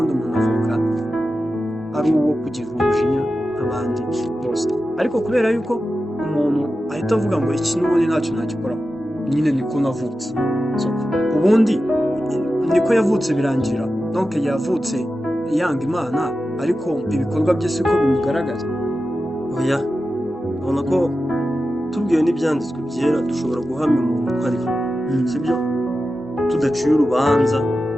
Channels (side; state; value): both; normal; correlation 0.92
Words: umuntu avuka ari uwo kugira umujinya abandi bose, ariko kubera yuko umuntu ahita avuga ngo iki n'ubundi ntacyo nagikoraho, nyine niko navutse. Ubundi niko yavutse birangira, donc yavutse yanga Imana ariko ibikorwa bye siko bimugaragaza. Oya, ubona ko tubwiwe n'ibyanditswe byera dushobora guhamya umuntu ko ariho, sibyo? Tudaciye urubanza